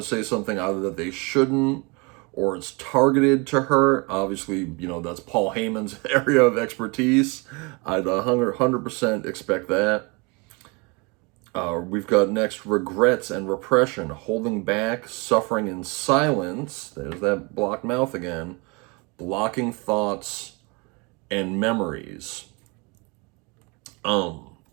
to say something either that they shouldn't, or it's targeted to hurt. Obviously, that's Paul Heyman's area of expertise. I'd 100% expect that. We've got next regrets and repression, holding back, suffering in silence. There's that blocked mouth again. Blocking thoughts and memories.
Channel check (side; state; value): left; quieter; 29.2 dB